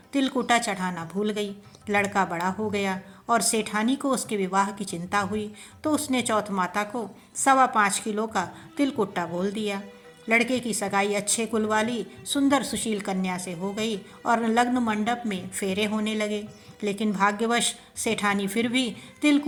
तिलकुट्टा चढ़ाना भूल गई। लड़का बड़ा हो गया और सेठानी को उसके विवाह की चिंता हुई तो उसने चौथ माता को 5.25 किलो का तिलकुट्टा बोल दिया। लड़के की सगाई अच्छे कुल वाली सुंदर सुशील कन्या से हो गई और लग्न मंडप में फेरे होने लगे। लेकिन भाग्यवश सेठानी फिर भी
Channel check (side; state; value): both; identical; correlation 1.00